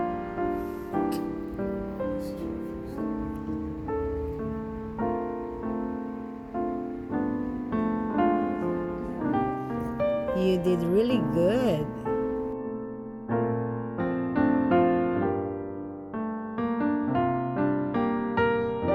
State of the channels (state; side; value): identical; both; correlation 1.00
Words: You did really good.